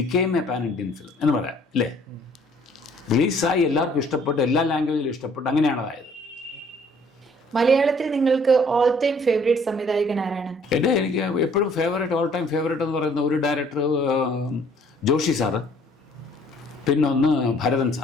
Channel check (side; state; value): both; normal; correlation 0.59